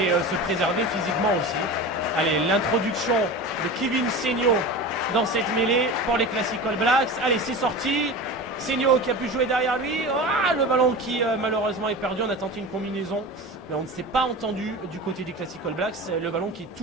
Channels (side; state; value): both; normal; correlation 0.31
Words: se préserver physiquement aussi. Allez, l'introduction de Kevin Seigno dans cette mêlée pour les Classic All Blacks. Allez, c'est sorti. Seigno qui a pu jouer derrière lui. Le ballon qui malheureusement est perdu. On a tenté une combinaison, mais on ne s'est pas entendu du côté des Classic All Blacks. Le ballon qui est